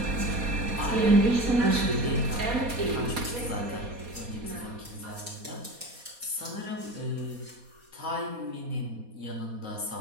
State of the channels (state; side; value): late; left; 4.2 ms